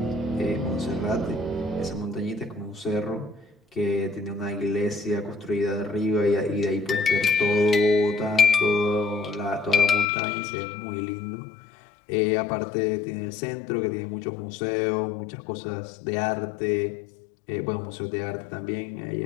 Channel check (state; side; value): drops out; right; at 10.1 s